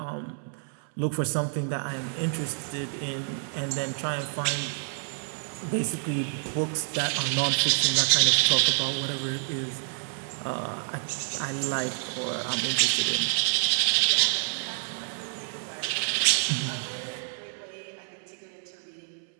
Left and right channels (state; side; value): silent; left; 59 dB below the other